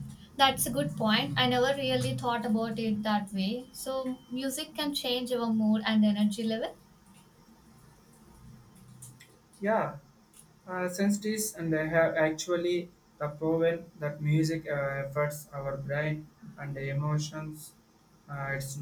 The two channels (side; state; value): both; identical; correlation 1.00